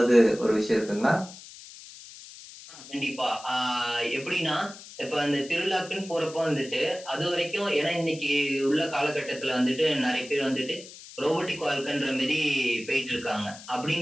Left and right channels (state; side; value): noise; left; hiss, 17 dB below the sound